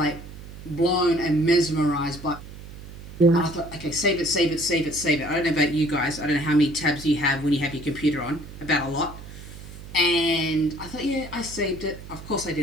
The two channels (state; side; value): noise; right; hum, 14 dB below the sound